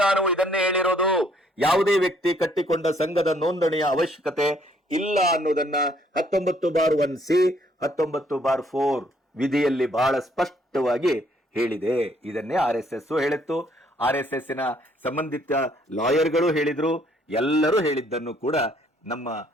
ಇದನ್ನೇ ಹೇಳಿರೋದು. ಯಾವುದೇ ವ್ಯಕ್ತಿ ಕಟ್ಟಿಕೊಂಡ ಸಂಘದ ನೋಂದಣಿಯ ಅವಶ್ಯಕತೆ ಇಲ್ಲ ಅನ್ನೋದನ್ನ 19/1C 19/4 ವಿಧಿಯಲ್ಲಿ ಬಹಳ ಸ್ಪಷ್ಟವಾಗಿ ಹೇಳಿದೆ. ಇದನ್ನೇ RSS ಹೇಳಿತ್ತು. RSSನ ಸಂಬಂಧಿತ ಲಾಯರ್ಗಳು ಹೇಳಿದ್ರು. ಎಲ್ಲರೂ ಹೇಳಿದ್ದನ್ನು ಕೂಡ ನಮ್ಮ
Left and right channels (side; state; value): both; normal; correlation 0.65